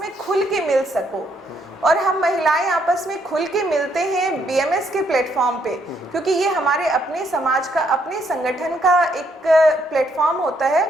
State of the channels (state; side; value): normal; both; correlation 0.72